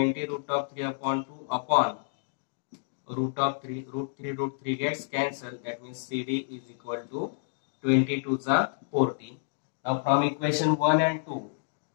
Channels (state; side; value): silent; right; digital silence